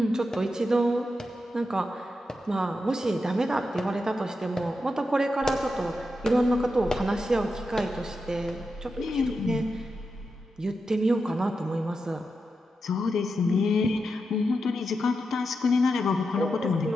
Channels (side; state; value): both; normal; correlation 0.87